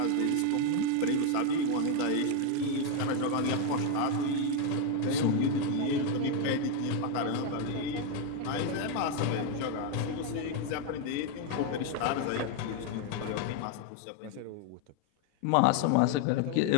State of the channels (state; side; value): different; both; correlation 0.01